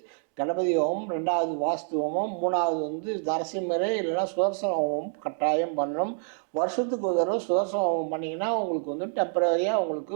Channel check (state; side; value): silent; left; 60 dB below the other